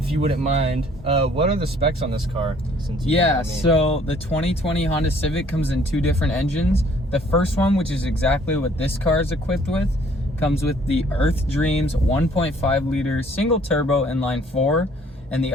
you wouldn't mind, what are the specs on this car? Since So the 2020 Honda Civic comes in 2 different engines. The first one, which is exactly what this car is equipped with, comes with the Earth Dreams 1.5 liter single turbo inline 4, and the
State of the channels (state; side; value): normal; both; correlation 0.59